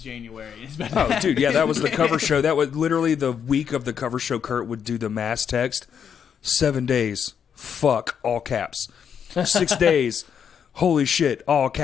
January. It's dude, yeah, that was the cover show. That was literally the week of the cover show. Kurt would do the mass text. 7 days, fuck, all caps. 6 days, holy shit, all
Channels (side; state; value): right; quieter; 7.7 dB